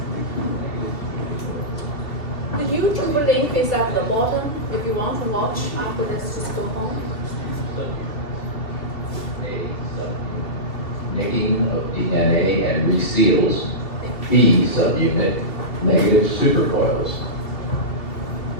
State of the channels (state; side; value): late; right; 2.8 ms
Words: The YouTube link is at the bottom. If you want to watch after this, just go home. Nicking of DNA and reseals B subunit negative supercoils.